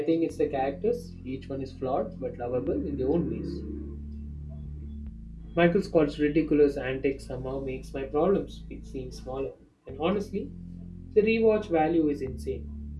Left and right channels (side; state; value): both; identical; correlation 1.00